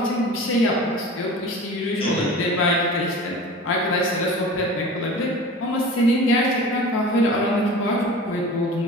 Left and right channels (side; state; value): both; normal; correlation 0.38